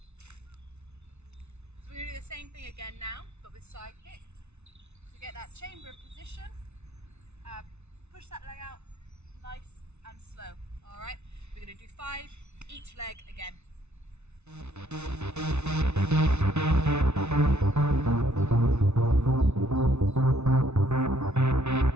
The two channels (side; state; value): left; late; 0.81 ms